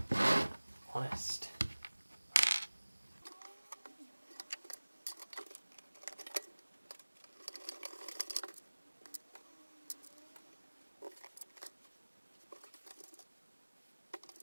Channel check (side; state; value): both; inverted; correlation -1.00